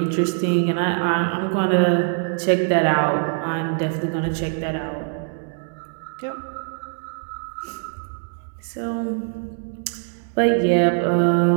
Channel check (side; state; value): left; silent; digital silence